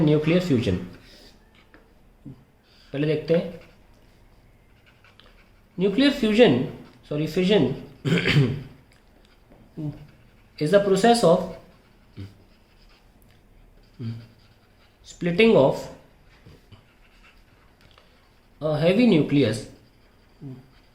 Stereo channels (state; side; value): identical; both; correlation 1.00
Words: nuclear fusion. पहले देखते हैं nuclear fission is the process of splitting of a heavy nucleus